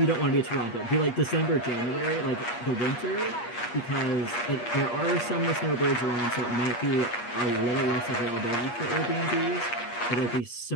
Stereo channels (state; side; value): late; right; 8.4 ms